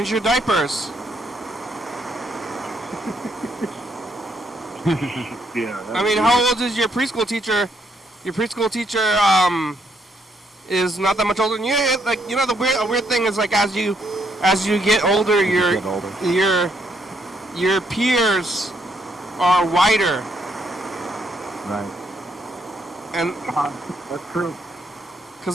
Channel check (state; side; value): normal; both; correlation 0.73